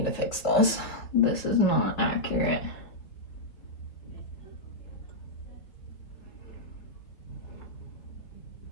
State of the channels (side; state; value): right; late; 4.5 ms